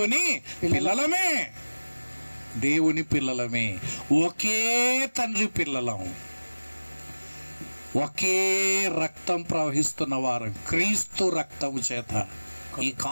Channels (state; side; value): inverted; both; correlation -1.00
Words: పిల్లలమే, ఒకే తండ్రి పిల్లలం. ఒకే రక్తం ప్రవహిస్తున్న వారు, క్రీస్తు రక్తము చేత. ఈ